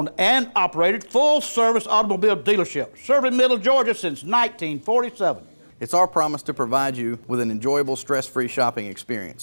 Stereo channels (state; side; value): inverted; both; correlation -1.00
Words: and operated full-service automobile dealership, serving Middle Georgia since 1947. It's our promise to provide you with an enjoyable, stress-free shopping